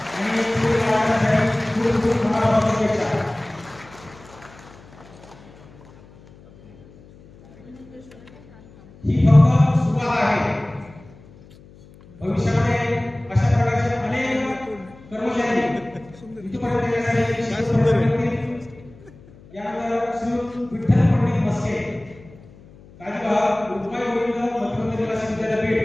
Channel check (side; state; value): left; noise; hum, 23 dB below the sound